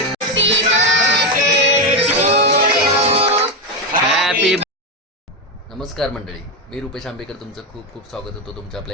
Happy. नमस्कार मंडळी, मी रुपेश आंबेकर तुमचं खूप खूप स्वागत होतं तुमच्या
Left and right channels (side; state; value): both; normal; correlation 0.09